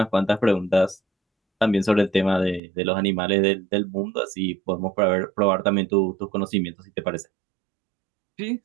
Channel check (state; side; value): drops out; left; at 2.6 s